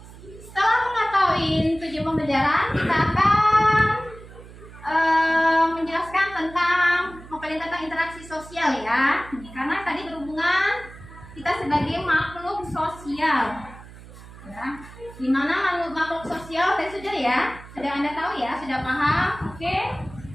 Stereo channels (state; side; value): noise; right; hum, 18 dB below the sound